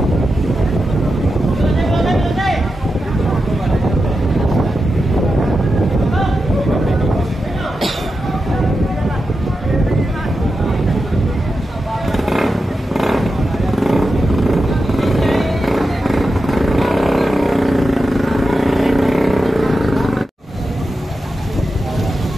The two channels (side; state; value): both; normal; correlation 0.90